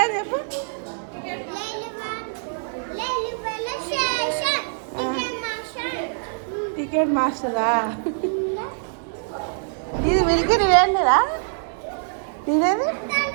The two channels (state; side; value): silent; left; 63 dB below the other